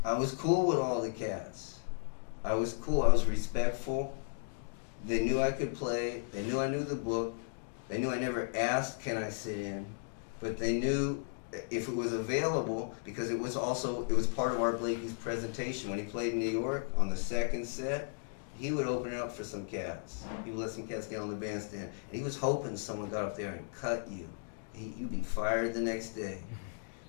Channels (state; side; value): silent; right; digital silence